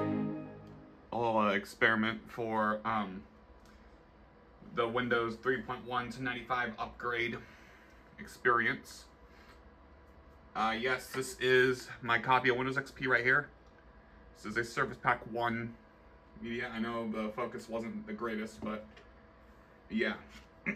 experiment for the Windows 3.1 to 95 upgrade experience. Yes, this is my copy of Windows XP right here. This is a Surface Pack 1 media. I know the focus wasn't the greatest, but yeah.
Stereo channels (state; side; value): identical; both; correlation 1.00